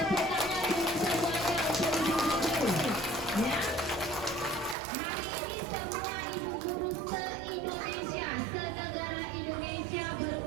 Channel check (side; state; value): left; drops out; at 4.8 s